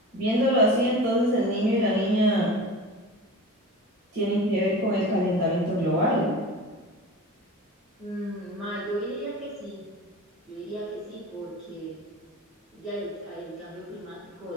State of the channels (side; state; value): both; normal; correlation 0.34